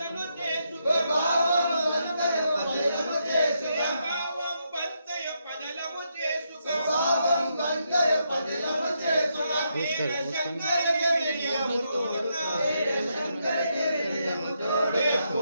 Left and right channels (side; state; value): both; inverted; correlation -0.80